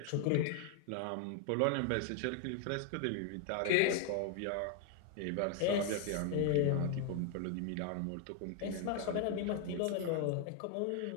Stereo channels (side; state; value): both; different; correlation 0.00